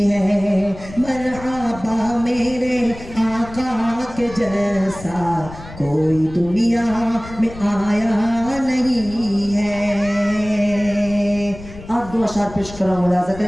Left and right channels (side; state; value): left; noise; rumble, 15 dB below the sound